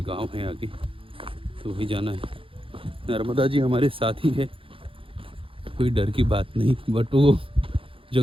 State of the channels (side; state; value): left; late; 0.26 ms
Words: गांव है आगे, तो वही जाना है। नर्मदा जी हमारे साथ ही है, कोई डर की बात नहीं। बट वो